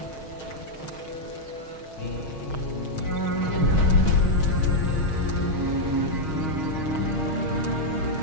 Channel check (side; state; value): right; late; 6.4 ms